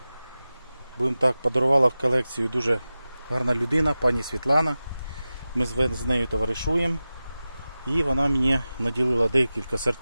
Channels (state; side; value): inverted; both; correlation -0.95